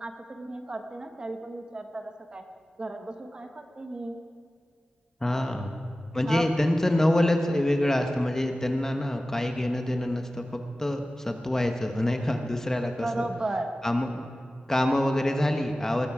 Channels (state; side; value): normal; both; correlation 0.96